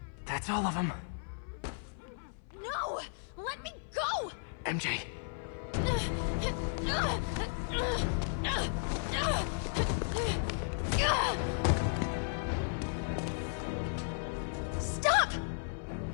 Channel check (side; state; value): right; silent; 55 dB below the other